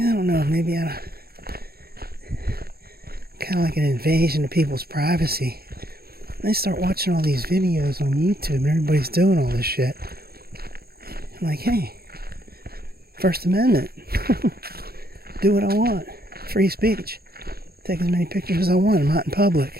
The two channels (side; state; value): left; late; 0.45 ms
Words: don't know, maybe kind of like an invasion of people's privacy. And I start watching all these videos on YouTube and everybody's doing all this shit. I'm like, hey, First Amendment. Do what I want. Free speech. Take as many pictures as I want. I'm out in